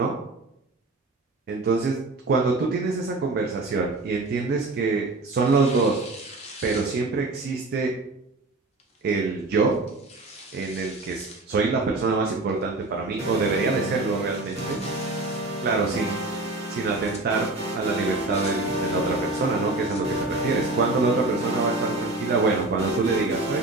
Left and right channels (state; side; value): quieter; left; 3.1 dB